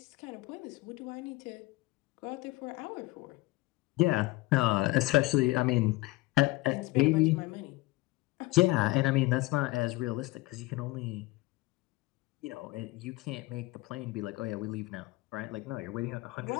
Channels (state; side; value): quieter; right; 20.3 dB